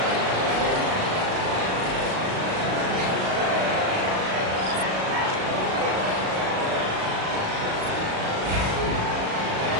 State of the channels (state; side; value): late; left; 37 ms